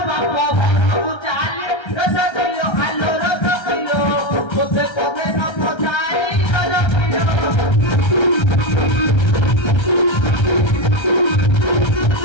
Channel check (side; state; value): right; late; 1.3 ms